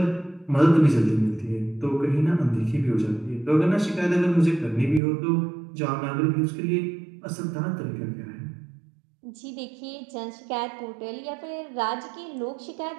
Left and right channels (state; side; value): drops out; left; at 5.0 s